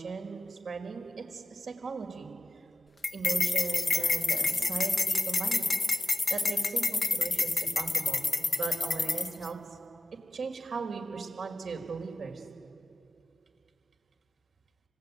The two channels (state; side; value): normal; both; correlation 0.95